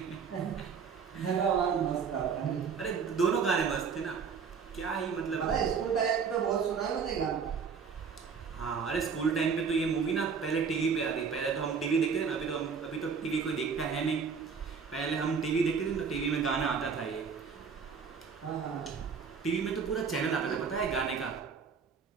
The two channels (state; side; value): quieter; left; 6.0 dB